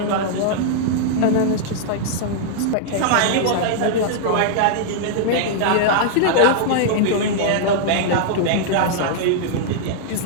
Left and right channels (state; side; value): different; both; correlation -0.01